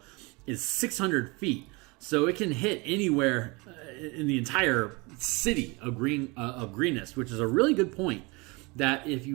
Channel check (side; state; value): left; quieter; 26.8 dB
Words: is 600 feet, so it can hit anywhere in the entire city of Greenest, which is a really good point. That if